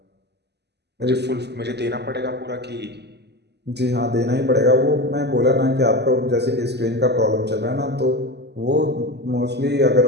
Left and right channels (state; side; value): late; left; 0.49 ms